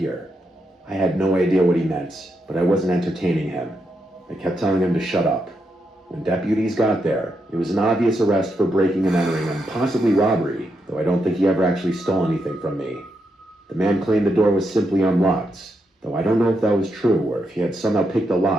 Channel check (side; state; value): both; normal; correlation 0.82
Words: I had no idea what he meant, but I wasn't entertaining him. I kept telling him to shut up. When deputies got there, it was an obvious arrest for breaking and entering and possibly robbery, though I don't think he ever actually stole anything from me. The man claimed the door was simply unlocked, though I don't know if that was true or if he had somehow picked a